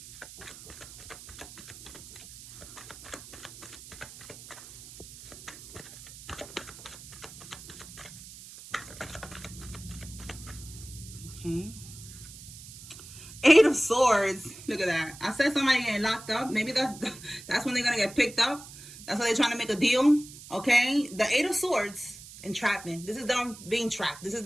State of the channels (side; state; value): right; noise; hiss, 16 dB below the sound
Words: Okay. Eight of Swords. Look at that. I said somebody getting locked up. Maybe that's when they're gonna get picked up. That's why they're trying to make a deal. Okay. The Eight of Swords, entrapment. This is them being trapped. This is